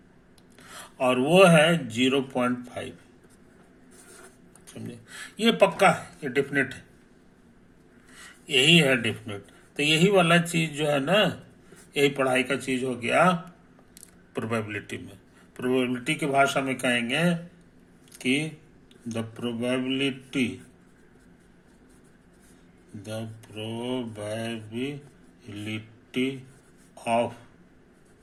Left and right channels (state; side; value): identical; both; correlation 1.00